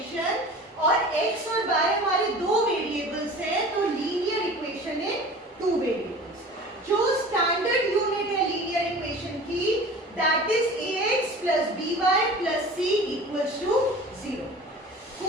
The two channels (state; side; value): normal; both; correlation 0.40